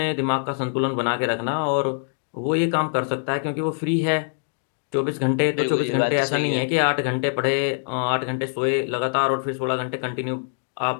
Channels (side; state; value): right; silent; digital silence